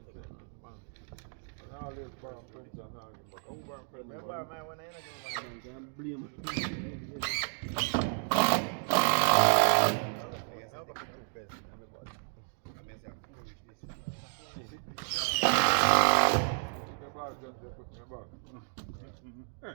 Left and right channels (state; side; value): silent; left; 56 dB below the other